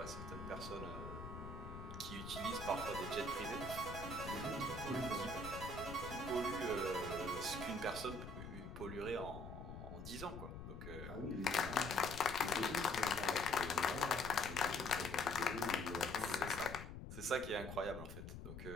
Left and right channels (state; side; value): noise; left; rumble, 9 dB below the sound